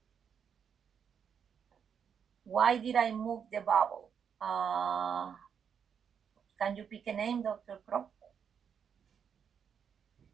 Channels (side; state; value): left; quieter; 7.4 dB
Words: Why did I move the bubble? Can you pick a name, Dr. Crow?